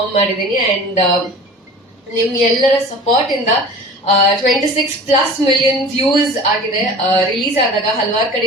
ಮಾಡಿದ್ದೀನಿ. ಅಂಡ್ ನಿಮ್ ಎಲ್ಲರ ಸಪೋರ್ಟ್ ಇಂದ 26+ ಮಿಲಿಯನ್ ವ್ಯೂಸ್ ಆಗಿದೆ. ರಿಲೀಸ್ ಆದಾಗ ಹಲವಾರು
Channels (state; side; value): normal; both; correlation 0.40